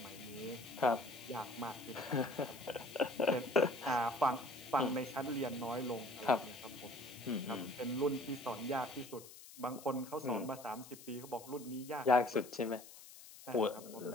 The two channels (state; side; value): noise; left; hiss, 17 dB below the sound